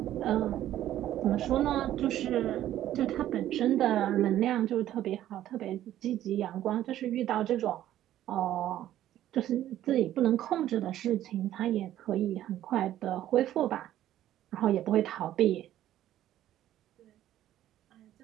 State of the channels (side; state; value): left; quieter; 12.7 dB